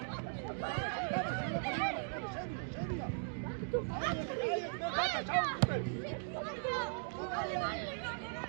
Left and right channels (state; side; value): silent; left; digital silence